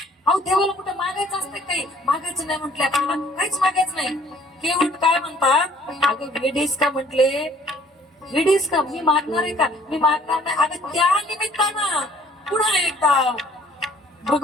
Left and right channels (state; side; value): normal; both; correlation 0.58